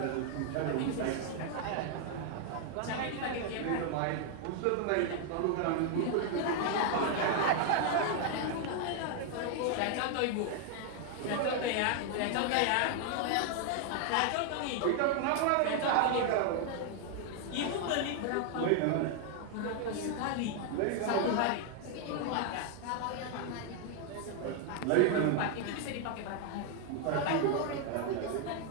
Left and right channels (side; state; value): both; different; correlation 0.00